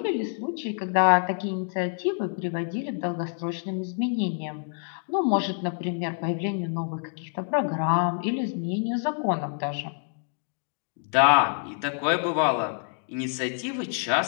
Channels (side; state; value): right; silent; 60 dB below the other